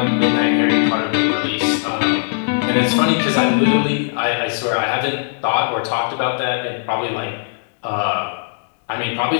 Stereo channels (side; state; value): right; silent; digital silence